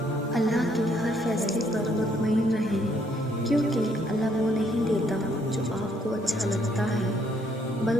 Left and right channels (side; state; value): both; normal; correlation 0.68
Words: اللہ کے ہر فیصلے پر مطمئن رہیں، کیونکہ اللہ وہ نہیں دیتا جو آپ کو اچھا لگتا ہے،